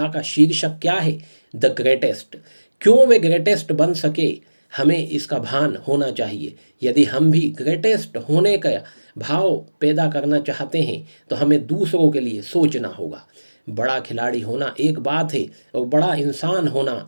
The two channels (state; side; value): inverted; both; correlation -1.00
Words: का शीर्षक क्या है? The greatest. क्यों वे ग्रेटेस्ट बन सके, हमें इसका भान होना चाहिए। यदि हम भी ग्रेटेस्ट होने का भाव पैदा करना चाहते हैं तो हमें दूसरों के लिए सोचना होगा। बड़ा खिलाड़ी होना एक बात है और बड़ा इंसान